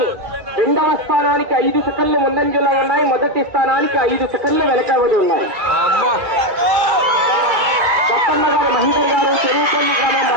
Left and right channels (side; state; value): left; late; 2.3 ms